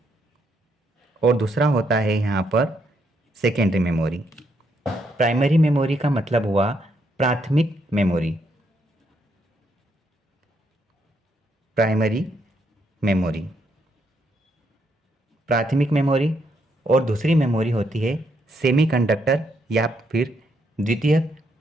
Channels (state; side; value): normal; both; correlation 0.76